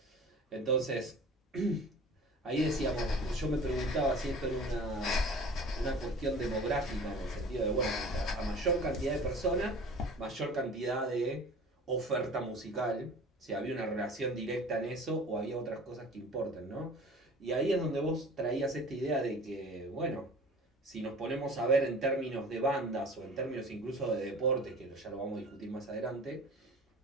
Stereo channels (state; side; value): normal; both; correlation 0.42